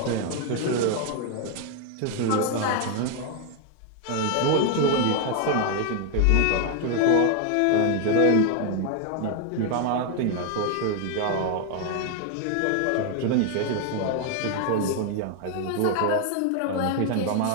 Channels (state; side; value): different; both; correlation 0.00